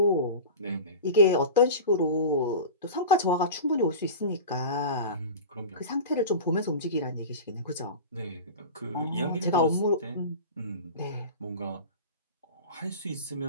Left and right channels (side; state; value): both; inverted; correlation -0.31